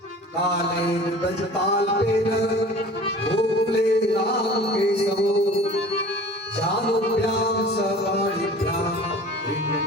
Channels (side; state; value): both; normal; correlation 0.43